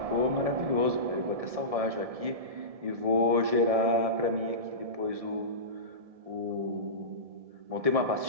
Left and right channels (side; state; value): left; late; 1.7 ms